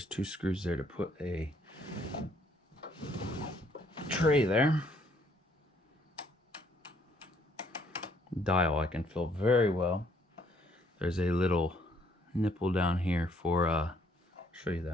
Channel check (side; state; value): both; normal; correlation 0.67